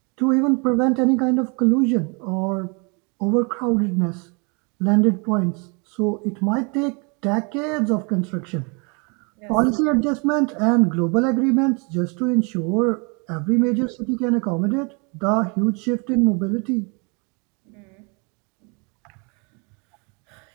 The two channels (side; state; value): left; quieter; 33.0 dB